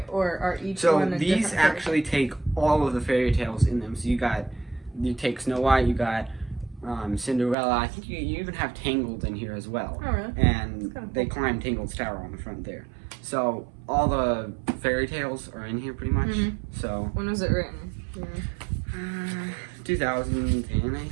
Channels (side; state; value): left; drops out; at 7.6 s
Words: or are each one a different these actually take all of the fairy tales in them. So you take Snow White, you got Cinderella. I think you even have Tangled in here as well. Oh, really? And they climb Tangled's tower on the front there. So all the fairy tales are in here pretty much. So when was it written? 2010, I